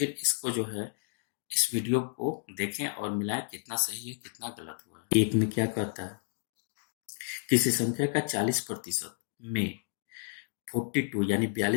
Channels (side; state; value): right; silent; digital silence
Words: इसको जो है इस वीडियो को देखें और मिलाएं कितना सही है कितना गलत हुआ है। एक में क्या कहता है, किसी संख्या का 40% में 42 यानी